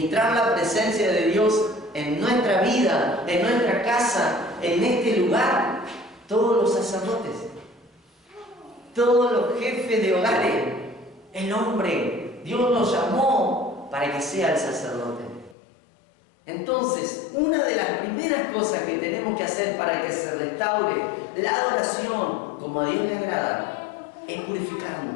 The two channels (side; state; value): right; drops out; at 15.6 s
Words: la presencia de Dios en nuestra vida, en nuestra casa, en este lugar, todos los sacerdotes, todos los jefes de hogares, el hombre, Dios lo llamó para que sea el sacerdote. Entonces, una de las primeras cosas que tenemos que hacer para que se restaure la adoración como a Dios le agrada es